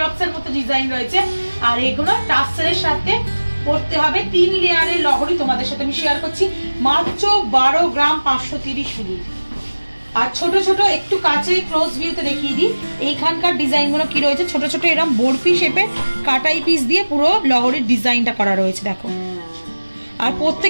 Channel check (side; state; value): both; inverted; correlation -1.00